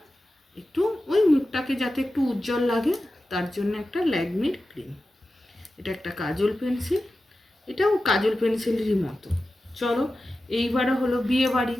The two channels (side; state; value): both; normal; correlation 0.93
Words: একটু ওই মুখটাকে যাতে একটু উজ্জ্বল লাগে তার জন্য একটা ল্যাকমির ক্রিম। এটা একটা কাজল পেন্সিল, এটাও কাজল পেন্সিলেরই মতো। চলো, এইবারে হলো বিয়ে বাড়ি,